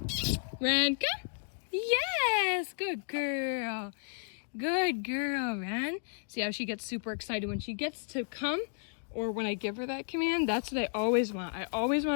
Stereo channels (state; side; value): silent; right; digital silence